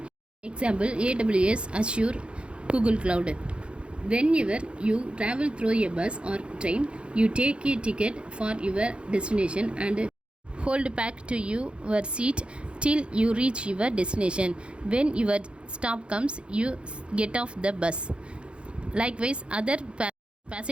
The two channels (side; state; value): left; late; 0.057 ms